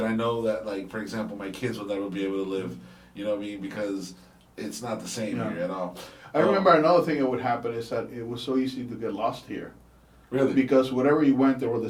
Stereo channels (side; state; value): both; identical; correlation 1.00